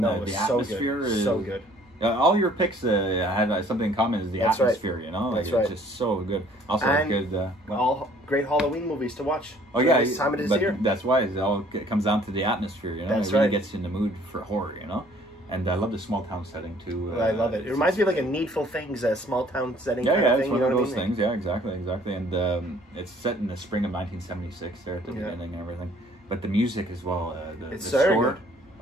the so atmosphere good. is so good. All your picks had something in common, is the atmosphere, you know? Like, it's just so good. Also, and good... all great Halloween movies to watch. Oh, yeah. This time of this year. That's why it comes down to the atmosphere, you know? That's it really gets you in the mood for horror, you know? And I love the small town setting, too. I love it. It reminds me of like a Needful Things, a small town setting kind of thing. It's one of those things. Yeah, exactly. And it's set in the spring of 1976 there at the beginning and everything. But the music as well. The score. Good.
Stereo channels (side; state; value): both; normal; correlation 0.57